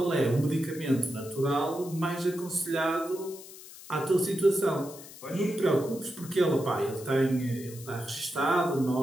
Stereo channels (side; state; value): left; noise; hiss, 16 dB below the sound